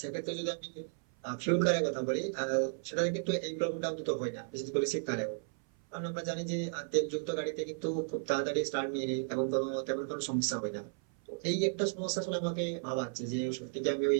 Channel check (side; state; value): left; silent; 55 dB below the other